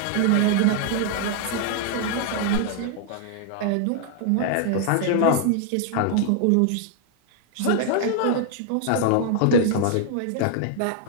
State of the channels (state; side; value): different; both; correlation 0.00